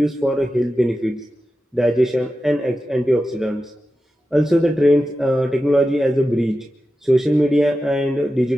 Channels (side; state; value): both; normal; correlation 0.92